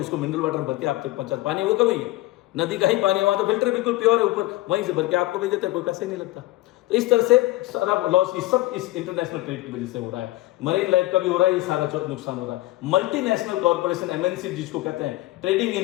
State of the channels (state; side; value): quieter; right; 18.2 dB